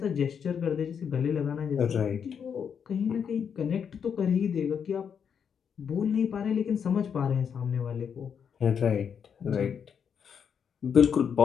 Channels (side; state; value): right; quieter; 7.3 dB